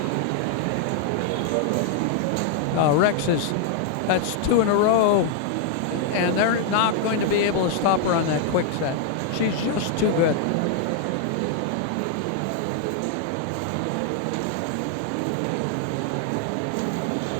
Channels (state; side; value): different; both; correlation 0.00